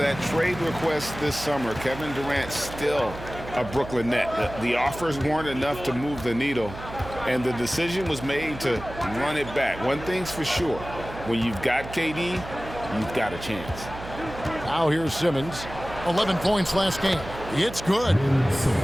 trade request this summer, Kevin Durant still a Brooklyn Net. The offers weren't enough to move the needle, and the decision was made to run it back. One thing's for sure, when you've got KD, you've got a chance. Now here's Simmons. 11 points last game. It's good.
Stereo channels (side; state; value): right; noise; hum, 12 dB below the sound